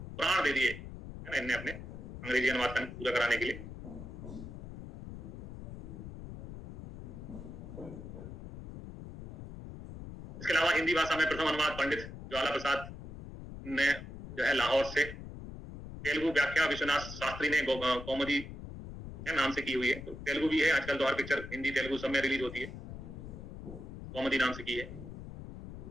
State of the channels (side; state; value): left; noise; rumble, 11 dB below the sound